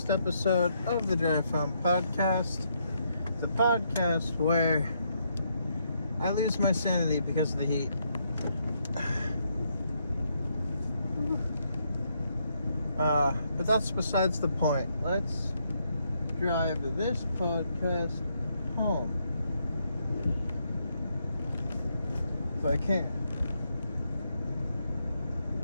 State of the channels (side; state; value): both; inverted; correlation -0.76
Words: episode of the Drive Home Podcast, the podcast where I lose my sanity because of the heat. But that's besides the point. Let's drive this podcast home. If I can.